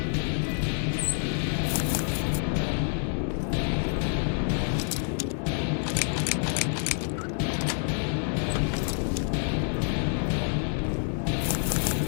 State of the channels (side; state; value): right; silent; 60 dB below the other